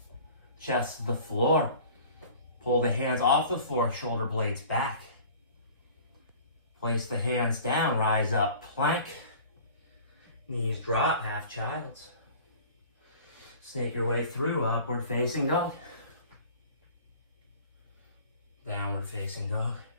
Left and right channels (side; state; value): both; inverted; correlation -0.45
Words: Chest to the floor. Pull the hands off the floor, shoulder blades back. Place the hands down, rise up, plank. Knees drop, half child's. Snake your way through, upward facing dog. Downward facing dog.